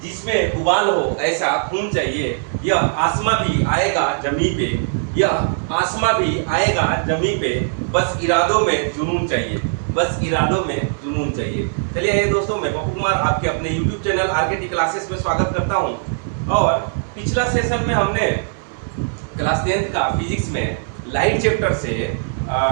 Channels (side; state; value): left; silent; 65 dB below the other